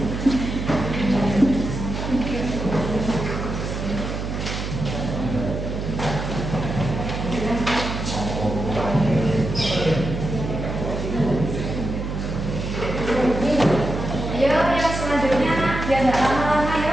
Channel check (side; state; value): right; noise; hum, 4 dB below the sound